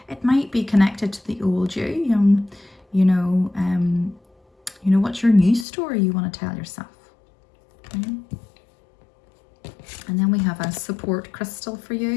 It might be connected to the old you. You know, what's your new story you want to tell yourself? Okay. And then we have a support crystal for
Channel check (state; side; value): drops out; right; at 5.7 s